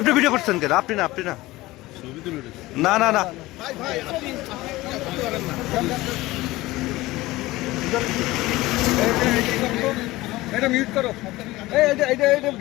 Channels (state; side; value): quieter; right; 18.8 dB